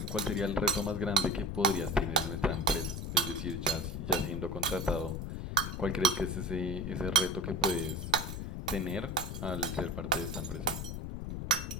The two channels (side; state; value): left; noise; rumble, 5 dB below the sound